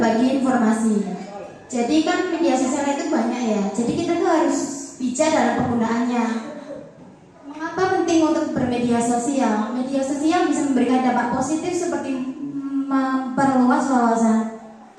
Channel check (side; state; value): both; identical; correlation 1.00